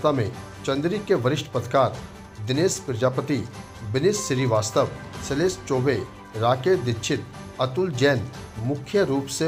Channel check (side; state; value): both; identical; correlation 1.00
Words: में चंदेरी के वरिष्ठ पत्रकार दिनेश प्रजापति, विनीत श्रीवास्तव, शैलेश चौबे, राकेश दीक्षित, अतुल जैन मुख्य रूप से